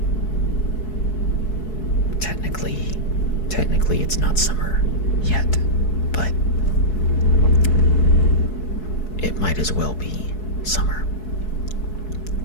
technically it's not summer yet, but it might as well be summer.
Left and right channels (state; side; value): late; right; 4.7 ms